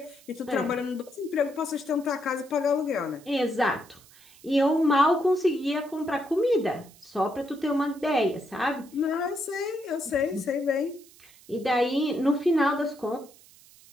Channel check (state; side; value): noise; right; hiss, 25 dB below the sound